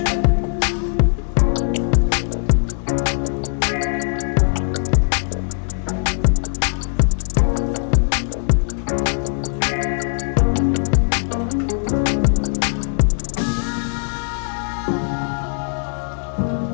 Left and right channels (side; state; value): right; silent; 66 dB below the other